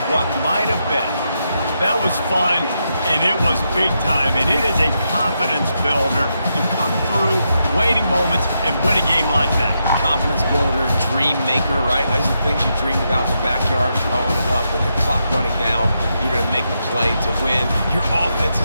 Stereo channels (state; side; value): inverted; both; correlation -0.83